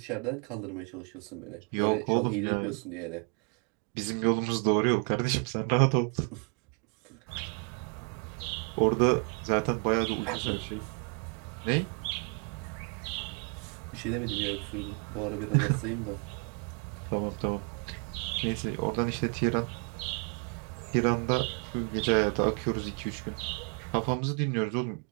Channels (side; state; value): left; quieter; 35.0 dB